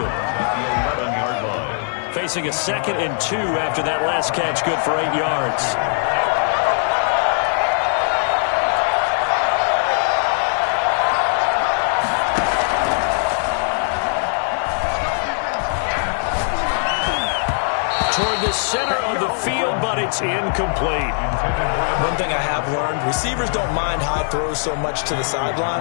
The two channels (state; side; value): silent; right; 63 dB below the other